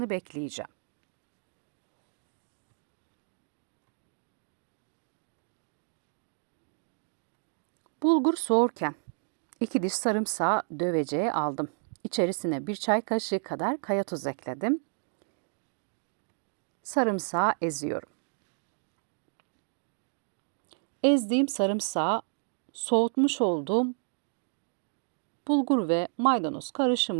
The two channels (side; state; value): left; silent; 57 dB below the other